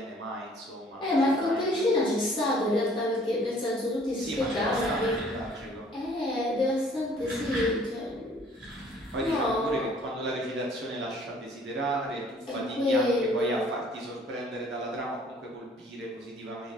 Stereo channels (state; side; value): normal; both; correlation 0.56